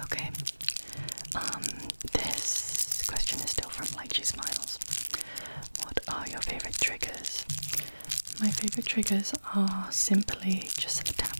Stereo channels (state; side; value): inverted; both; correlation -1.00